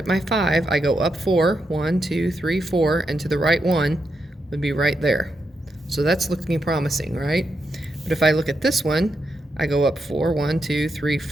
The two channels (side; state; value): both; normal; correlation 0.84